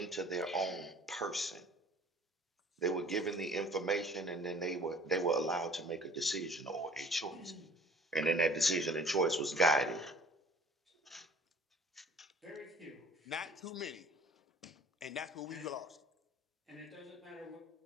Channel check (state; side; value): normal; both; correlation 0.49